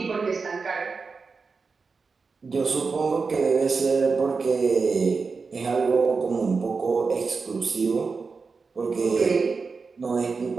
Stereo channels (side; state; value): left; quieter; 4.7 dB